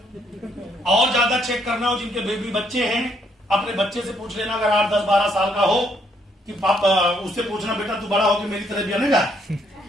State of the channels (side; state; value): both; normal; correlation 0.71